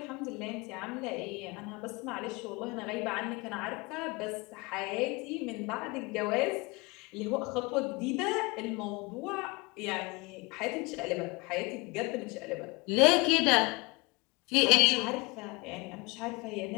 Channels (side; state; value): right; quieter; 26.5 dB